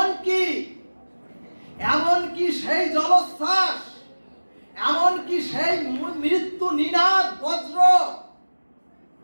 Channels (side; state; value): both; inverted; correlation -1.00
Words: এমনকি সেই জলোচ্ছ্বাস, এমনকি সেই মৃত্যু নিনাদ বজ্র